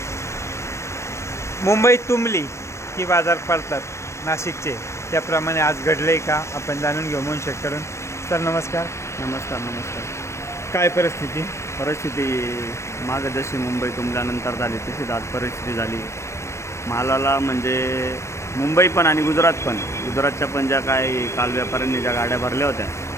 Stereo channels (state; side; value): late; right; 0.13 ms